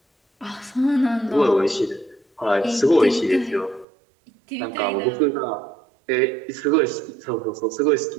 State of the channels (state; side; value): drops out; left; at 3.9 s